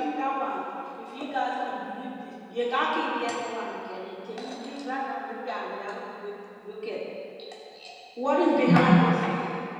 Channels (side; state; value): both; identical; correlation 1.00